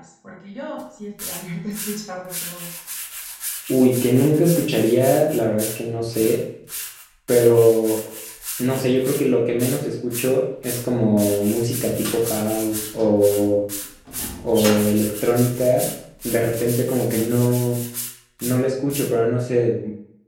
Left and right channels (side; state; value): both; identical; correlation 1.00